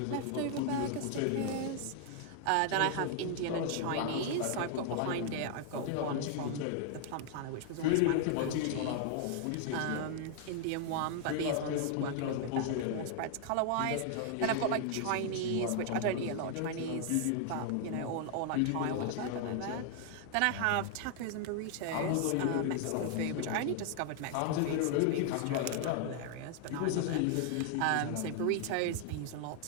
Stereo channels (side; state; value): both; different; correlation 0.00